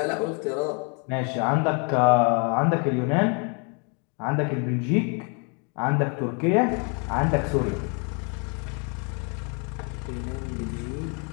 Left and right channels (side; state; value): right; quieter; 36.9 dB